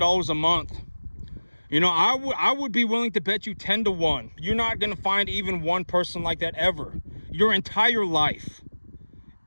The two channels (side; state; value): both; inverted; correlation -1.00